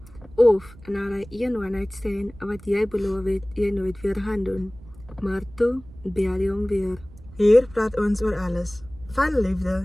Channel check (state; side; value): noise; right; rumble, 20 dB below the sound